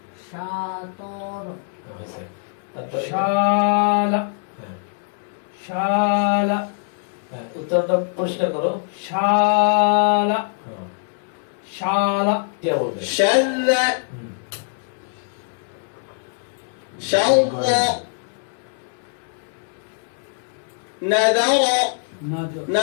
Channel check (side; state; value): right; silent; digital silence